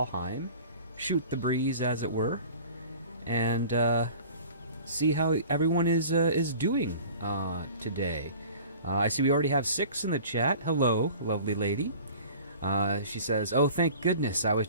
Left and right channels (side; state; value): both; inverted; correlation -0.43